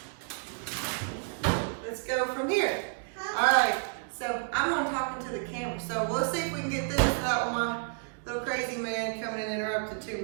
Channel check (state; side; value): silent; left; digital silence